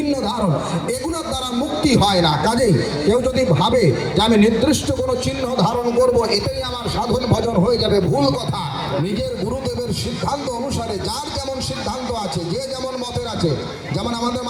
ধারণ এগুলোর দ্বারা মুক্তি হয় না। কাজেই কেউ যদি ভাবে যে আমি নির্দিষ্ট কোনো চিহ্ন ধারণ করব, এটাই আমার সাধন ভজন হয়ে যাবে, ভুল কথা। নিজের গুরুদেবের সিদ্ধান্ত অনুসারে যার যেমন সিদ্ধান্ত আছে, যে যেমন মতের আছে, যেমন আমাদের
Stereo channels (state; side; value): identical; both; correlation 1.00